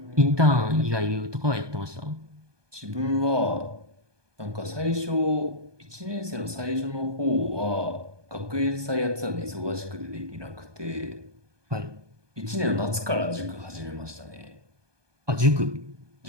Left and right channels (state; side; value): late; left; 1.2 ms